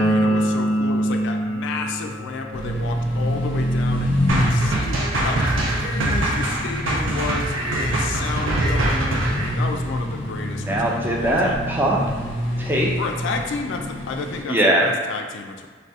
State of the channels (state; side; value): normal; both; correlation 0.61